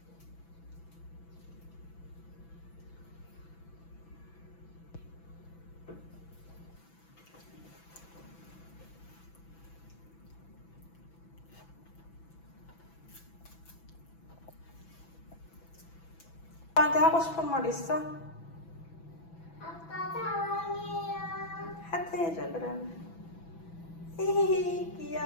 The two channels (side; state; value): right; late; 6.0 ms